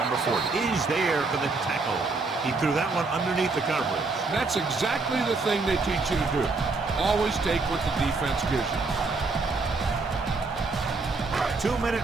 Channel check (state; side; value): quieter; left; 3.8 dB